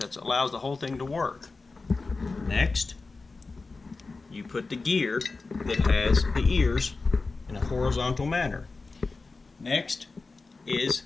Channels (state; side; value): quieter; right; 3.9 dB